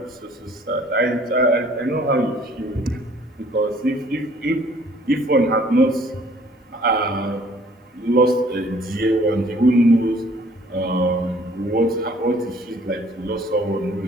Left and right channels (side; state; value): both; normal; correlation 0.57